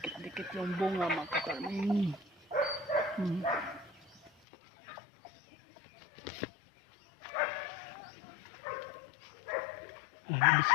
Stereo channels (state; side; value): drops out; right; at 4.3 s